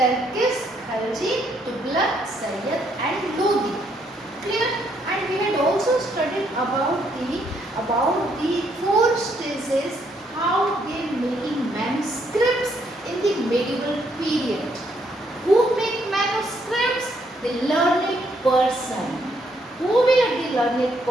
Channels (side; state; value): both; normal; correlation 0.72